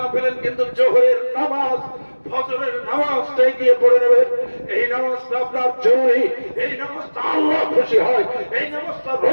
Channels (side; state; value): both; inverted; correlation -1.00